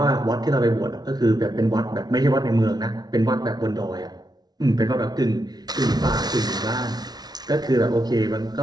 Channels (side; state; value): left; late; 0.19 ms